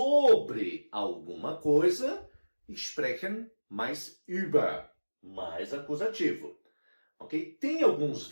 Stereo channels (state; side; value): inverted; both; correlation -1.00